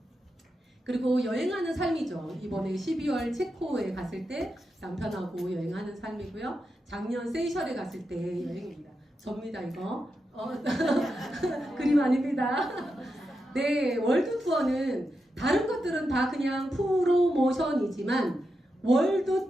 그리고 여행하는 삶이죠. 이번에 12월 체코에 갔을 때 남편하고 여행하는 삶이고요. 작년 세이셜에 갔을 때 여행입니다. 접니다 이거. 그림 아닙니다. 네, 월드 투어는 다른 것들은 다 그냥 프로모션이지만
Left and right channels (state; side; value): normal; both; correlation 0.87